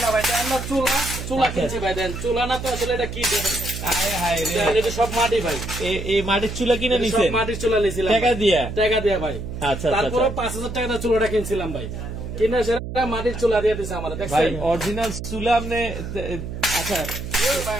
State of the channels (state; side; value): noise; right; hum, 7 dB below the sound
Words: না ভাই, আমরা চুলা কিনছি ভাই। দেন চুলা না তো আসলে এটা কি দেখেন। হায় হায় রে, এটা সব মাটি ভাই। এই মাটির চুলা কিনে নিছেন? সব মাটির চুলা নিছিলাম টাকা দিয়া ভাই। আচ্ছা তারপরে 5000 টাকা চুলাটা কিনছিলাম ভাই। কিনে সেটা মাটির চুলা দিয়ে দিছে আমাদের। ভাই অরিজিনাল চুলা আপনি আচ্ছা